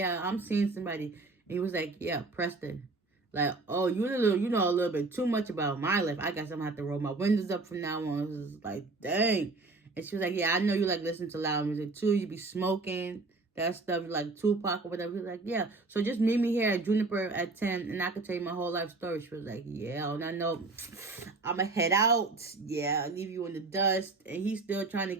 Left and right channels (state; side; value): quieter; left; 3.5 dB